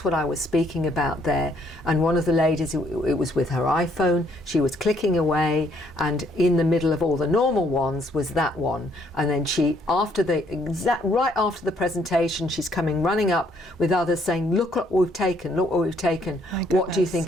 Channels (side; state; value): both; normal; correlation 0.68